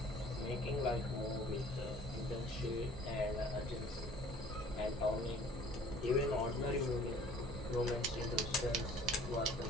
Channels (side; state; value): both; normal; correlation 0.51